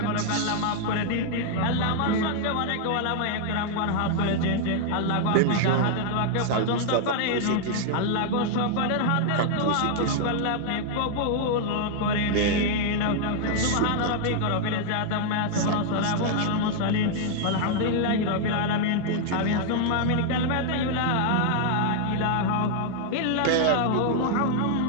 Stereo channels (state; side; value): different; both; correlation 0.00